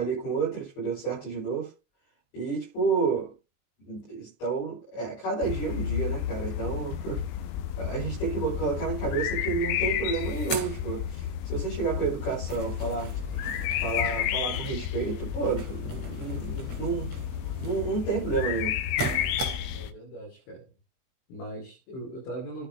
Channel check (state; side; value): late; right; 23 ms